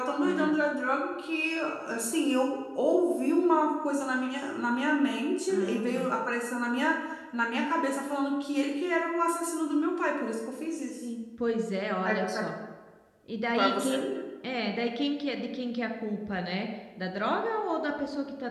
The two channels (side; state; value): both; identical; correlation 1.00